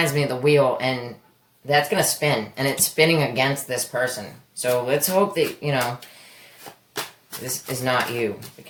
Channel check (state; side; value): identical; both; correlation 1.00